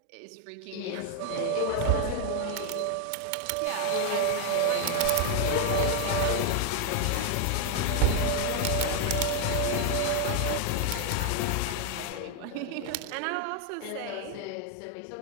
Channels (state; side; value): different; both; correlation 0.00